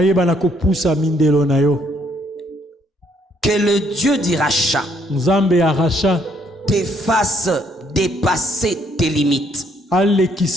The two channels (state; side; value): normal; both; correlation 0.68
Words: na kopusa mindelo na yo. Que le Dieu du rachat, Nzambe ya rachat, te fasse dépasser tes limites.